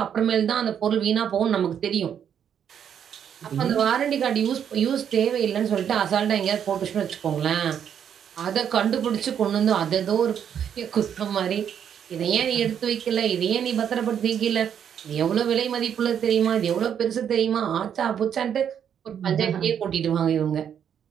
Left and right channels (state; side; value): quieter; left; 8.6 dB